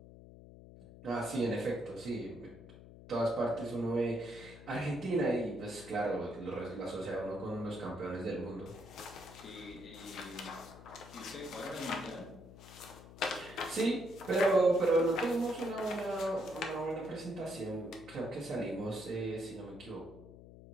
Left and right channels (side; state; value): left; noise; hum, 17 dB below the sound